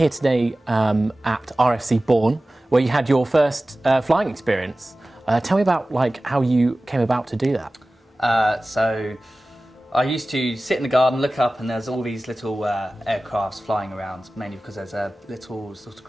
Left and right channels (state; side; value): normal; both; correlation 0.97